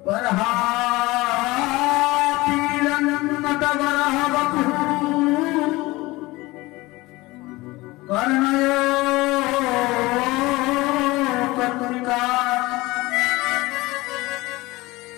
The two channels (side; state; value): right; quieter; 20.8 dB